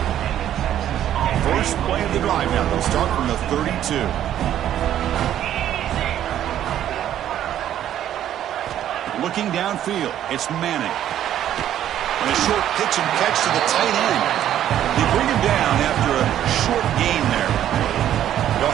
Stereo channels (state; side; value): quieter; left; 11.2 dB